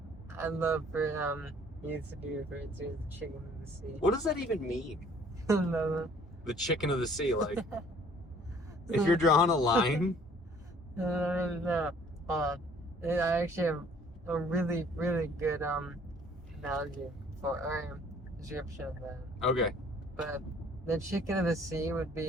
I'd love for you to be referred to as the chicken of the sea. What does that even mean? No. The chicken of the sea, like if you're drawing a line. No. Hold on. I actually have a really, really good analogy or description of that. Okay. But the chicken of the sea would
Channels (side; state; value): both; normal; correlation 0.56